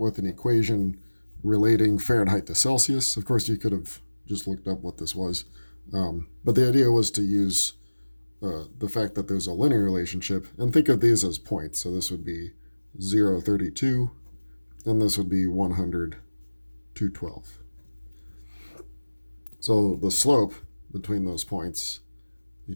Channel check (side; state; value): both; inverted; correlation -1.00